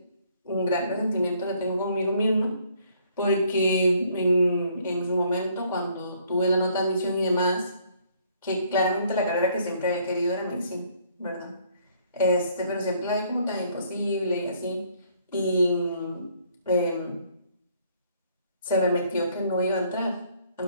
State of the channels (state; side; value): inverted; both; correlation -0.64